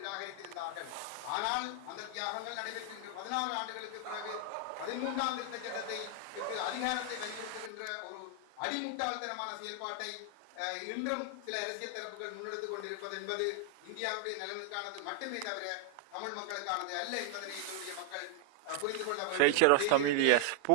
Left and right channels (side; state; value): both; different; correlation 0.00